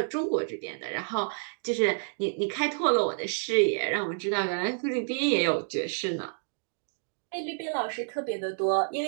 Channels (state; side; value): silent; left; digital silence